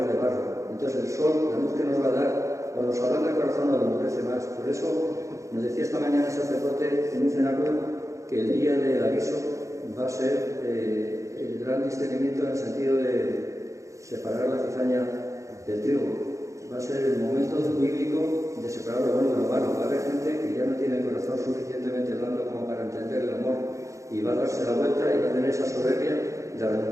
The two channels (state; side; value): late; left; 0.15 ms